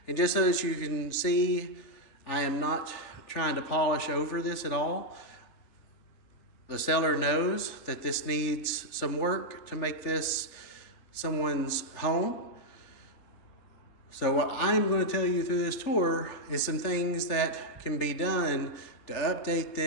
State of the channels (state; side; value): late; right; 3.4 ms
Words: And just so that you can see, I am not trying to polish over this at all. The seller knows that this needs some work to make this someone's home. So what I'm going to tell you through this tour is some things that can be done to update